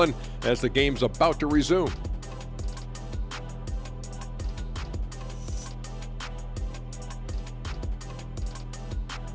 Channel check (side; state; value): both; identical; correlation 1.00